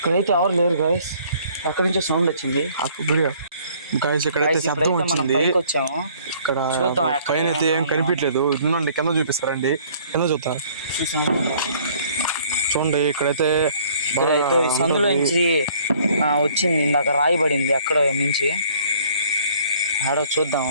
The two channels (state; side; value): inverted; both; correlation -0.58